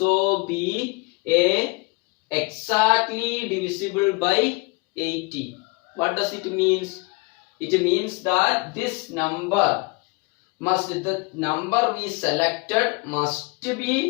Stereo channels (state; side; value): quieter; right; 27.1 dB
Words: be exactly divisible by 80. What does it means? It means that this number the number we selected must